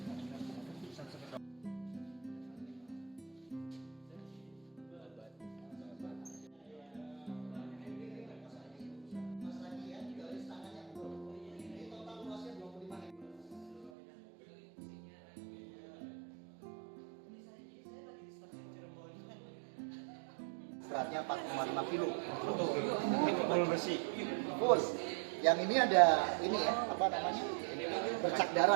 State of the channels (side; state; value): left; drops out; at 13.9 s